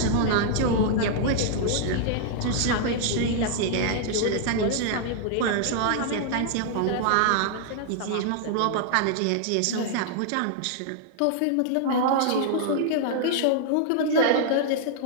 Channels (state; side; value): different; both; correlation -0.01